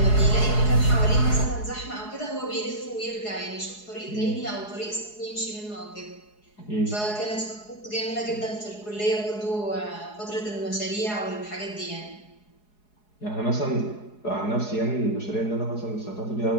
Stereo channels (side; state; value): right; late; 4.8 ms